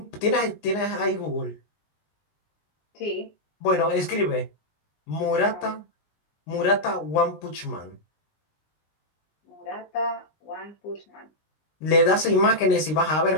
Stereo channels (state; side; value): late; right; 19 ms